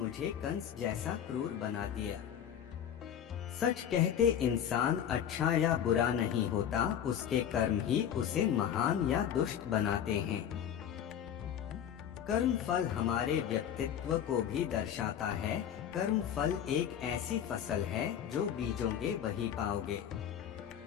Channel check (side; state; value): right; quieter; 9.4 dB